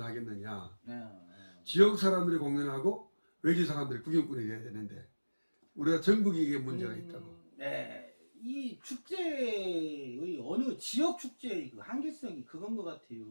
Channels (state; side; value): inverted; both; correlation -1.00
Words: 네. 지역 사람들이 공연하고 외지 사람들이 구경꾼이 돼야 되는데 우리가 전국에 이게 문제가 있다고. 네. 이 축제의 어느 지역 축제의 그 한계성이 그건 것